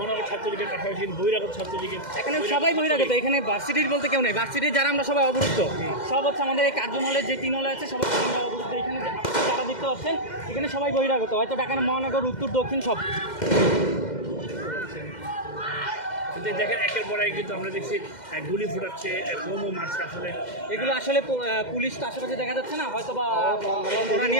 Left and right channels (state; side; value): late; right; 2.1 ms